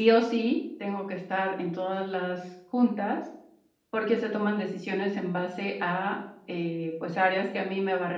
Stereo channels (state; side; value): identical; both; correlation 1.00